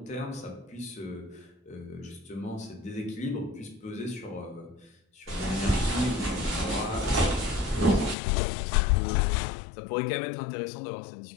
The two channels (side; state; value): right; drops out; at 8.2 s